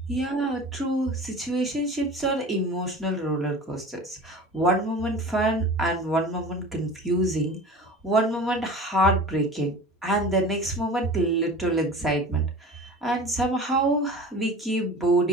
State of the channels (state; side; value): normal; both; correlation 0.37